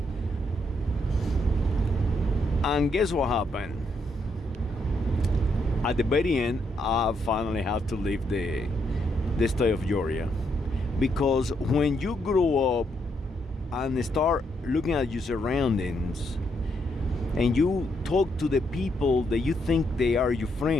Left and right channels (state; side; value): normal; both; correlation 0.76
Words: And guess what happened? At the very end, I finally had to leave the state of Georgia. Because when you grow up and start looking at your surroundings, and you talk to the people that you think they are your